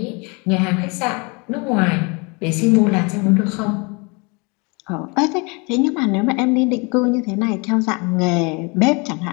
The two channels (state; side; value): quieter; right; 30.1 dB